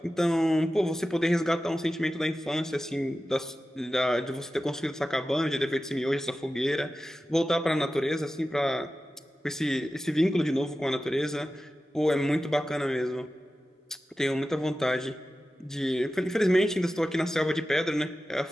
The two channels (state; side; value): normal; both; correlation 0.94